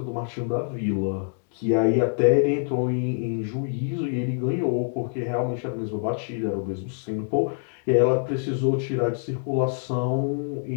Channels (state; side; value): silent; right; digital silence